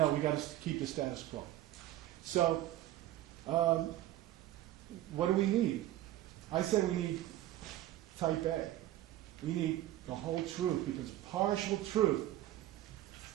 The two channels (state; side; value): quieter; left; 14.3 dB